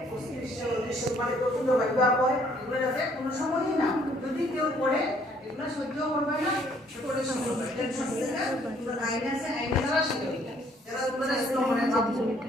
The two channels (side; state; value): both; normal; correlation 0.63